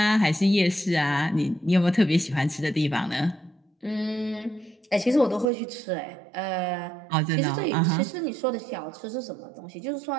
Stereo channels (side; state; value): left; drops out; at 5.5 s